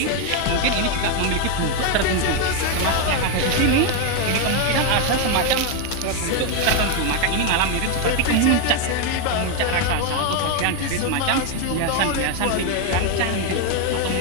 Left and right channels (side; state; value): both; different; correlation 0.02